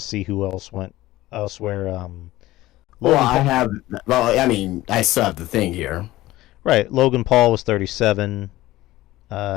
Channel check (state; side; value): quieter; right; 17.0 dB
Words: who else went elsewhere. I still have the thing here. Right, Logan Paul was 37.